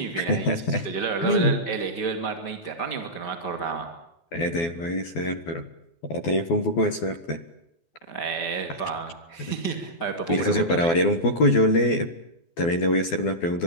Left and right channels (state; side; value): late; right; 12 ms